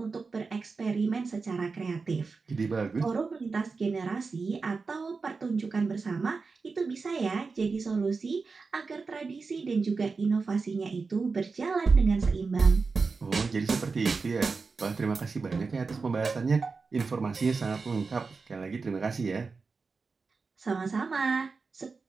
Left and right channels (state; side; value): quieter; left; 4.5 dB